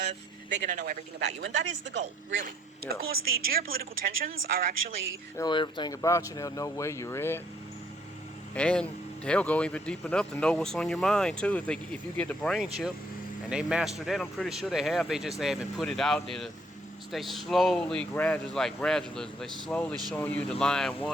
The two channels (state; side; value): normal; both; correlation 0.66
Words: they're going to know everything about you, and that is the goal, really. Yeah. Of course, the geopolitical tensions are actually... They know everything about you. They'll know where you're at, and they'll go even deep enough to know what's on your mind too. If you get the brain chip, and they master that, I'm pretty sure they have. They haven't put it out there. They slowly, gradualism. They slowly showing you the lying